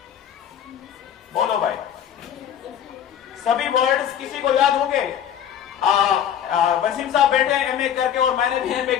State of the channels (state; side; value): quieter; right; 9.6 dB